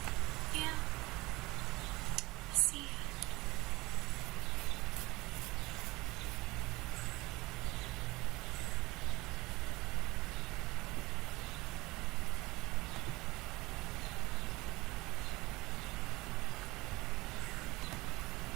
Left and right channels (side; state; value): left; quieter; 21.5 dB